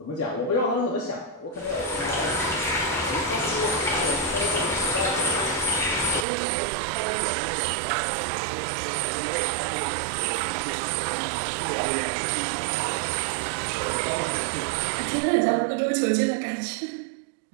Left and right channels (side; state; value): left; drops out; at 6.2 s